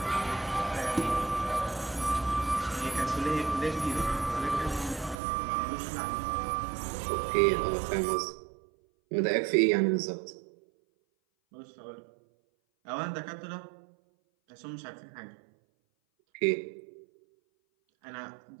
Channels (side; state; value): left; drops out; at 5.2 s